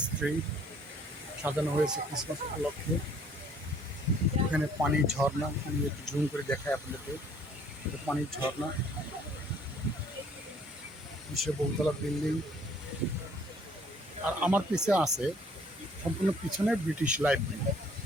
ট্রি সাজানো হয়েছে ক্রিসমাস উপলক্ষে। এখানে পানির ঝর্ণা, আমি একটু জুম করে দেখাই আপনাদেরকে। এটা পানির ঝর্ণা, বিশ্ব বহুতলা বিল্ডিং। আর আমার পিছনে আছে সম্পূর্ণ পিছনে ব্রিটিশ লাইব্রেরি।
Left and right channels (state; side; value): normal; both; correlation 0.59